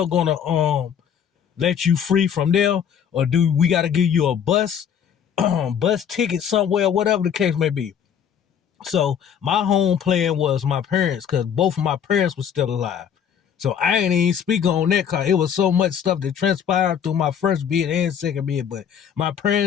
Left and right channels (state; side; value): quieter; right; 8.2 dB